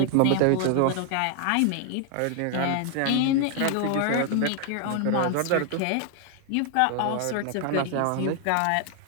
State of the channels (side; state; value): both; different; correlation 0.00